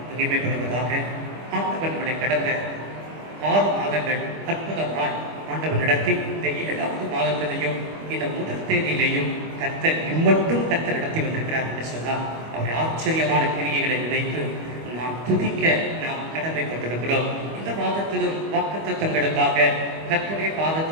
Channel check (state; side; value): late; left; 25 ms